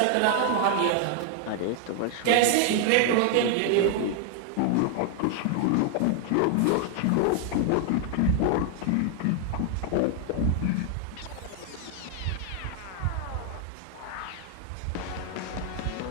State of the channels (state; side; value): different; both; correlation 0.00